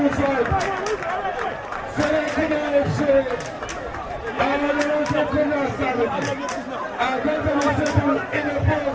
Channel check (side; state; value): both; identical; correlation 1.00